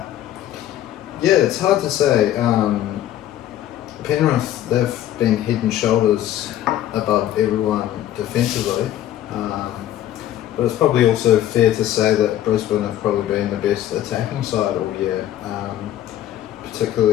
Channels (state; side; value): quieter; right; 12.3 dB